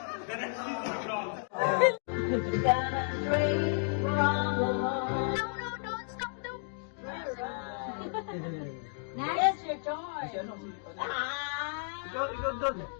Next, your choice.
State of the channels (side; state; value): right; silent; 56 dB below the other